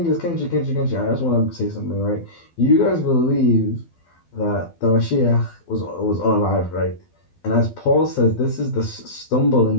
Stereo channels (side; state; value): right; late; 12 ms